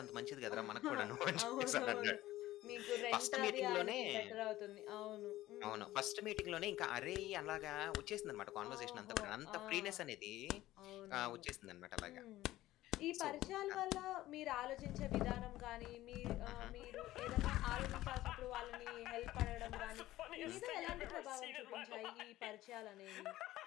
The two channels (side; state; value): right; quieter; 15.7 dB